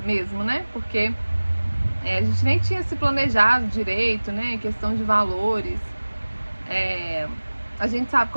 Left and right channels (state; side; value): inverted; both; correlation -1.00